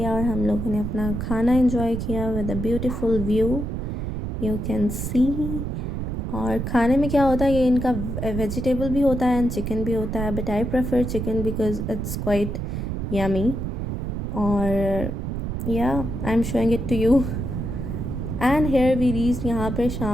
और हम लोगों ने अपना खाना एंजॉय किया with a beautiful view, you can सी। और खाने में क्या होता है, ये इनका वेजिटेबल भी होता है एंड चिकन भी होता है, but I prefer chicken because it's quite yummy. और या I am showing it to you. And here we reach, यहाँ पर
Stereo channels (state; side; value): noise; right; rumble, 3 dB below the sound